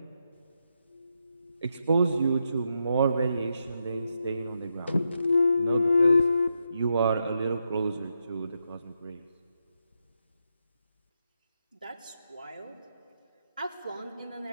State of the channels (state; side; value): inverted; both; correlation -0.83